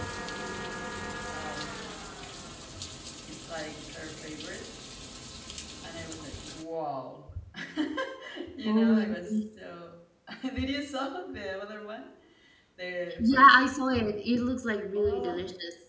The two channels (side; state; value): both; identical; correlation 1.00